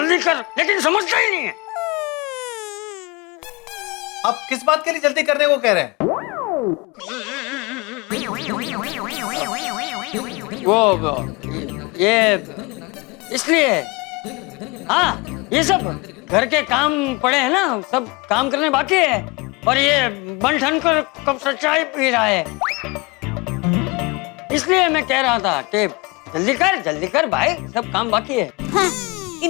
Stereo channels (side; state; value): right; quieter; 25.7 dB